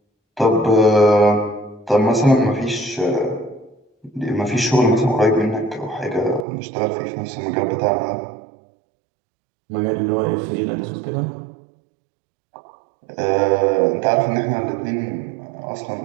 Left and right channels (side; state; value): left; drops out; at 6.5 s